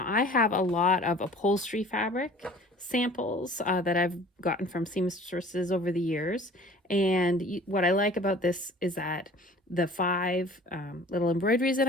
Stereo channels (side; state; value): both; normal; correlation 0.47